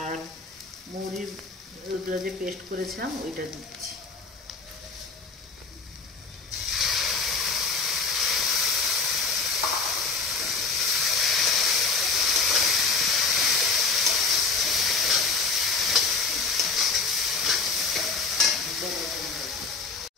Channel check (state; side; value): quieter; right; 4.5 dB